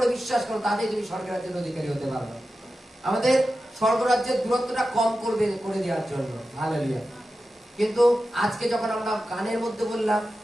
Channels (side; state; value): both; normal; correlation 0.92